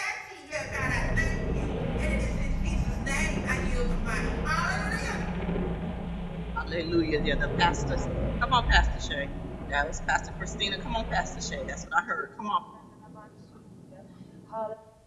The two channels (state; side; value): identical; both; correlation 1.00